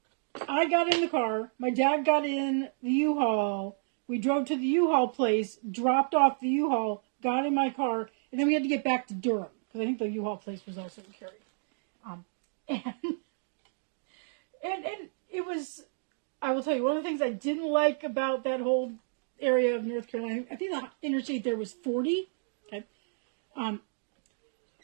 I got in the car, my dad got in the U-Haul, we drove to the U-Haul place, dropped off the U-Haul, got in my car, and then we had to get back to Durham, because I think the U-Haul place was also in Cary. And it was, I will tell you, one of the things I didn't like about that whole area of North Carolina, I think the interstate there was 40, okay,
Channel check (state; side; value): silent; left; digital silence